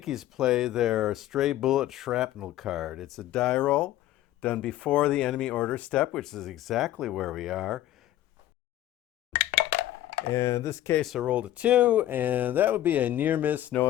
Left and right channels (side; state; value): right; quieter; 13.5 dB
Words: play their stray bullet shrapnel card. It's a die roll done before the enemy order step, which is exactly where we are. And in this case, I rolled a 2, and that would be a near miss, no